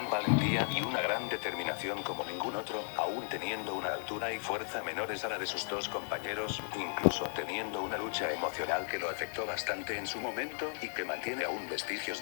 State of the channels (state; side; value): silent; right; digital silence